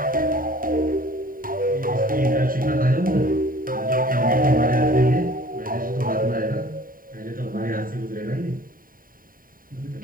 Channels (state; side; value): late; left; 0.41 ms